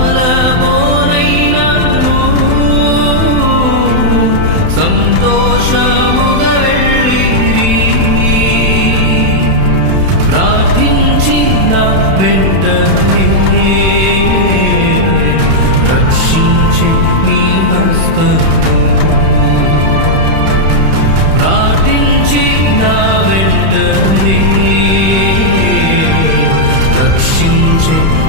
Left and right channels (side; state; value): left; late; 31 ms